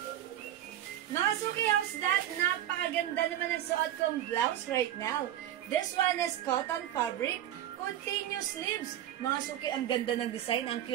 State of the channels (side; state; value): left; quieter; 12.1 dB